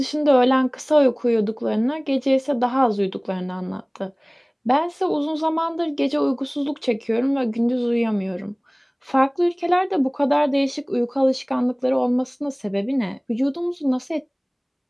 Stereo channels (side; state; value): both; identical; correlation 1.00